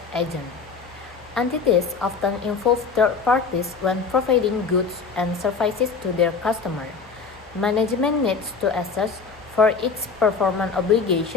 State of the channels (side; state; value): right; quieter; 5.1 dB